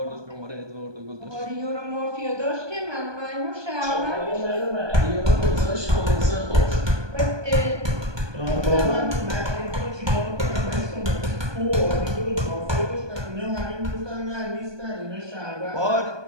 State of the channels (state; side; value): late; left; 1.2 ms